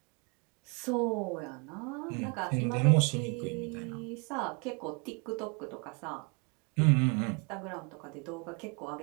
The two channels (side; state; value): left; quieter; 34.1 dB